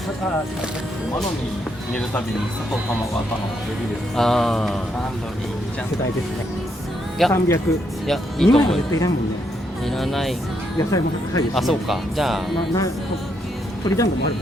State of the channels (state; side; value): normal; both; correlation 0.77